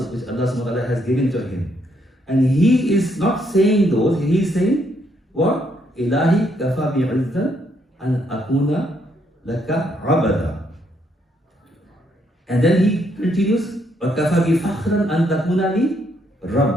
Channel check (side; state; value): both; normal; correlation 0.73